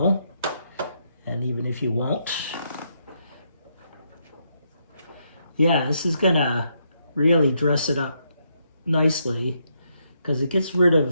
and even if you won't. Yeah, this is gonna really dress it up nicely because it gets rid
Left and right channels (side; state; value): both; inverted; correlation -0.78